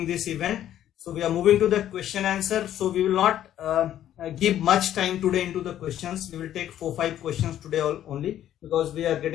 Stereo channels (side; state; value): right; quieter; 11.6 dB